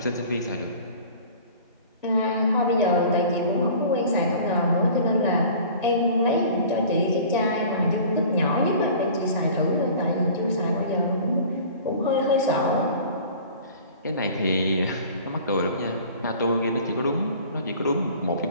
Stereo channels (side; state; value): both; inverted; correlation -0.44